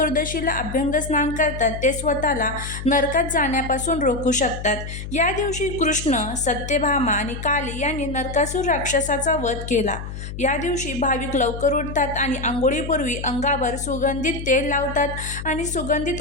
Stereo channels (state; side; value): noise; left; hum, 8 dB below the sound